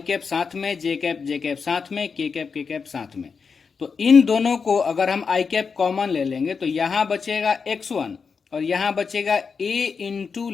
कैप साथ में, जे कैप साथ में, के कैप साथ में। तो इन दोनों को अगर हम आई कैप कॉमन ले लेंगे तो यहां बचेगा x1 और यहां बचेगा a इंटू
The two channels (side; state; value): right; quieter; 5.5 dB